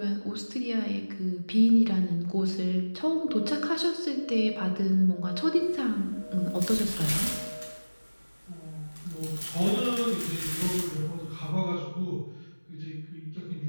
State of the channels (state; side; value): inverted; both; correlation -1.00